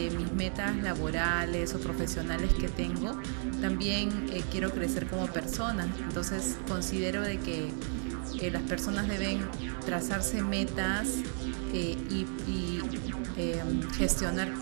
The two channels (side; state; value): left; silent; 56 dB below the other